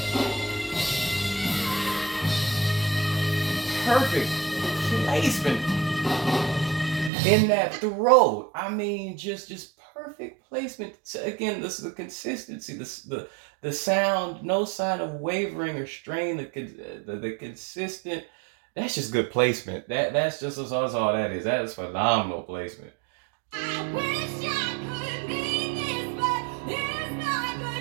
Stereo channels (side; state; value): left; drops out; at 7.1 s